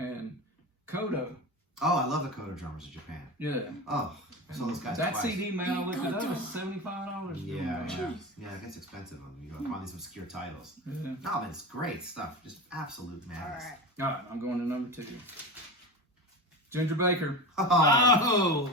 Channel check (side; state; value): both; normal; correlation 0.25